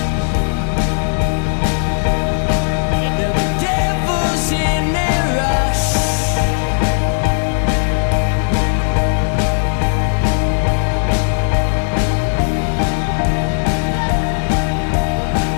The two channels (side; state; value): right; silent; digital silence